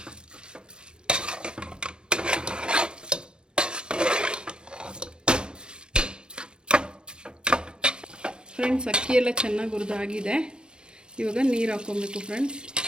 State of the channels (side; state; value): left; late; 0.053 ms